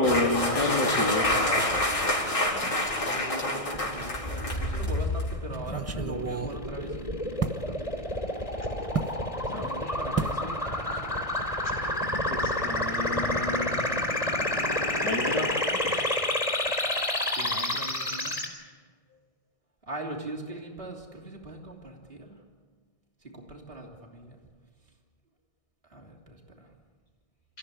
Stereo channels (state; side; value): late; right; 1.6 ms